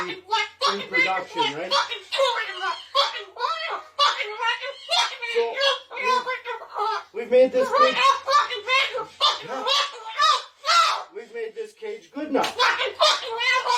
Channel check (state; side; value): identical; both; correlation 1.00